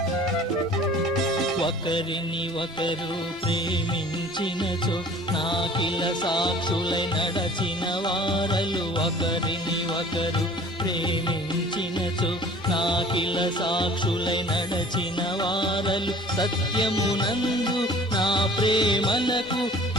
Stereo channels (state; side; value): normal; both; correlation 0.47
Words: ఒకరిని ఒకరు ప్రేమించినచో నాకిల సాక్షులై నడచిన వారలు. ఒకరిని ఒకరు ప్రేమించినచో నాకిల సాక్షులై నడచిన వారలు. సత్యమునందు నా ప్రేమలకు